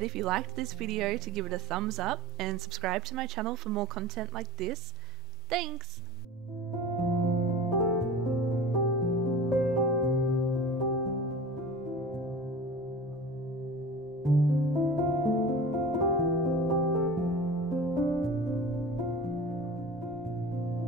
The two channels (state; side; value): normal; both; correlation 0.36